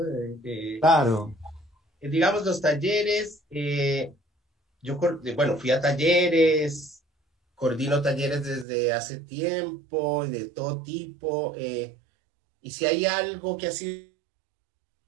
Claro. Digamos, los talleres, bueno, fui a talleres, coordino talleres desde hace tiempo, de todo tipo, y si hay algo que ha sido...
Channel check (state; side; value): drops out; left; at 8.7 s